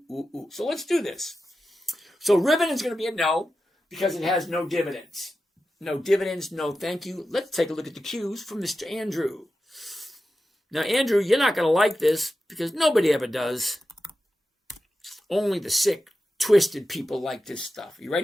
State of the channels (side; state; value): both; normal; correlation 0.92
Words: ooh, ooh. So let's do this. So Ribbon is going to be a no because it has no dividends. No dividends, no thank you. Let's take a look at the Qs from Mr. Andrew. Now, Andrew, you're not going to like this because nobody ever does. Only the sick, twisted people like this stuff. You